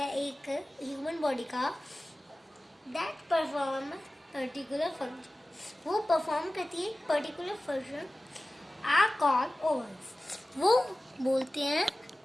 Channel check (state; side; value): normal; both; correlation 0.96